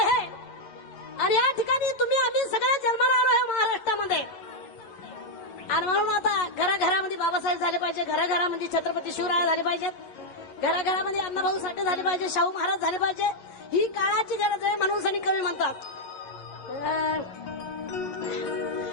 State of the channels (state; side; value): late; right; 9.0 ms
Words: आणि या ठिकाणी तुम्ही आम्ही सगळे जन्माला आलो आहे महाराष्ट्रामध्ये. आणि म्हणून आता घराघरामध्ये बाबासाहेब झाले पाहिजे, घराघरामध्ये छत्रपती शिवराय झाले पाहिजेत, घराघरामध्ये अण्णाभाऊ साठे झाले पाहिजे, शाहू महाराज झाले पाहिजे. ही काळाची गरज आहे म्हणून सनी कवी म्हणतात,